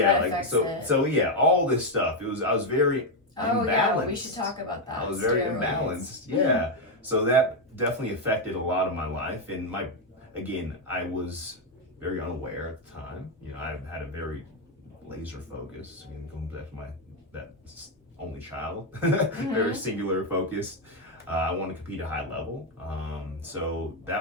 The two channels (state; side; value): normal; both; correlation 0.04